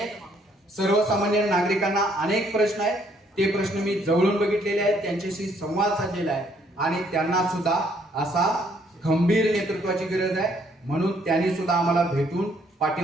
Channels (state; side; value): normal; both; correlation 0.67